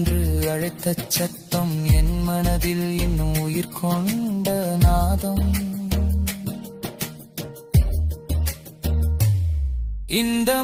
அழைத்த சத்தம் என் மனதில் இன்னும் உயிர் கொண்ட நாதம். இந்த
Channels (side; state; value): both; identical; correlation 1.00